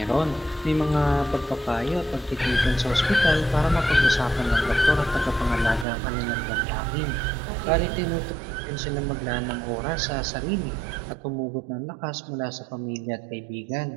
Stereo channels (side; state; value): left; drops out; at 5.9 s